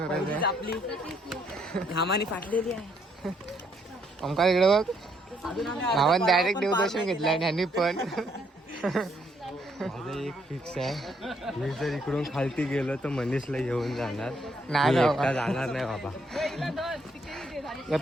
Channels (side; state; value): both; normal; correlation 0.71